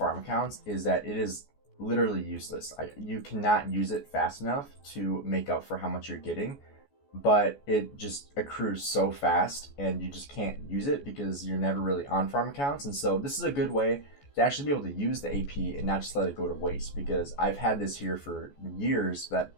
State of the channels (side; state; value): right; late; 14 ms